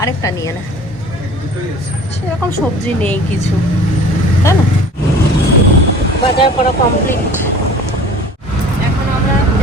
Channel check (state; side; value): normal; both; correlation 0.45